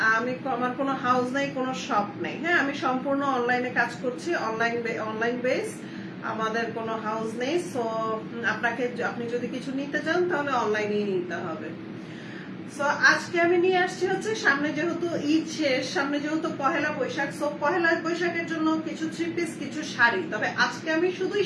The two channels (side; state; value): both; identical; correlation 1.00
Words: আমার কোনো হাউস নাই, কোনো শপ নেই। হ্যাঁ, আমি সম্পূর্ণ অনলাইনে কাজ করছি, অনলাইন বেস। আমাদের কোনো হাউস নেই। সো আপনি যদি কিছু নিতে চান তাহলে অনলাইনেই নিতে হবে। সো আজকে আমি নিয়ে আসছি হচ্ছে, সামনে যেহেতু ঈদ শেষ, সামনে যেহেতু পহেলা বৈশাখ, সো পহেলা বৈশাখের জন্য কিছু থ্রি পিস, কিছু শাড়ি। তবে আজকে আমি শুধুই